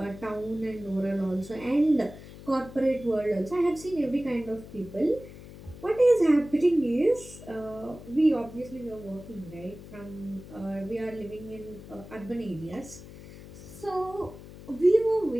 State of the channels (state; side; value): noise; left; hum, 16 dB below the sound